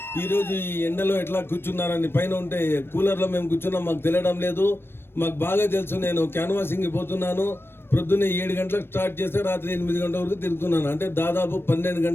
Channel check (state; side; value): late; right; 0.11 ms